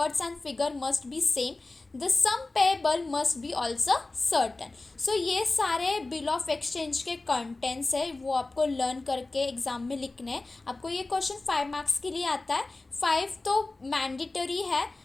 and figure must be same. The sum payable must be also certain. So ये सारे bill of exchange के contents है, वो आपको learn करके exam में लिखने हैं. आपको ये क्वेश्चन 5 मार्क्स के लिए आता है. 5 तो मैंडेटरी है.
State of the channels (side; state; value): right; quieter; 3.2 dB